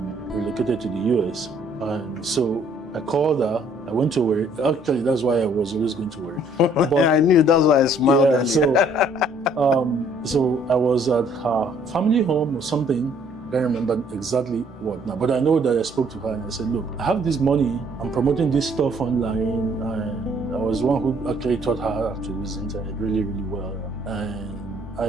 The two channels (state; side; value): normal; both; correlation 0.62